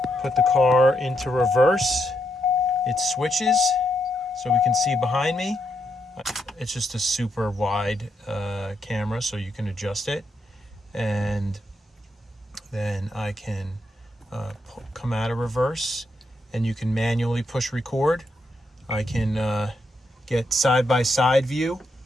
put the car into reverse, it switches so we can see behind me. It's just a super wide camera, so you can adjust it, and then I can come out of reverse, and you can manually push record. I can get side-by-side view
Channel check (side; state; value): both; normal; correlation 0.80